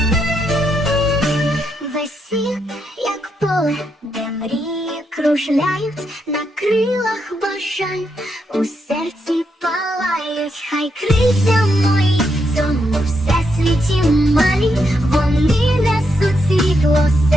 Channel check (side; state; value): both; normal; correlation 0.80